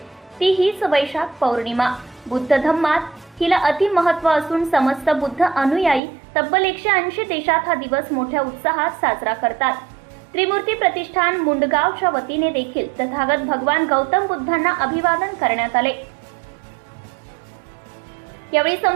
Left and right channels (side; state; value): left; drops out; at 6.0 s